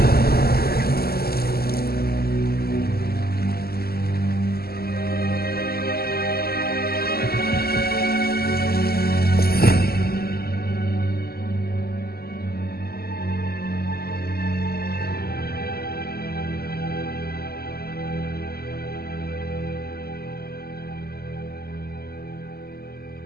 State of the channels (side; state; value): right; late; 0.45 ms